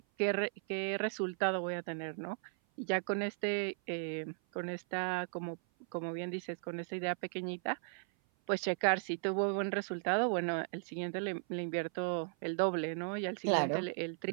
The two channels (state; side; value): silent; left; 53 dB below the other